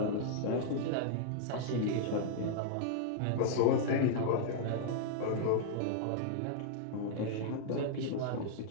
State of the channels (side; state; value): both; different; correlation -0.01